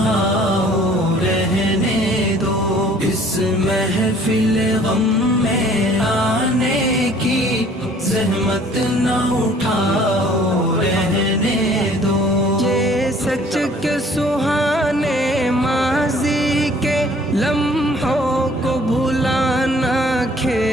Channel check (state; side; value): normal; both; correlation 0.55